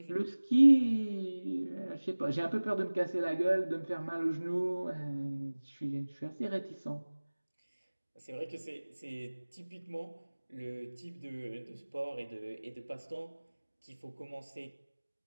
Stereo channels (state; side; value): inverted; both; correlation -1.00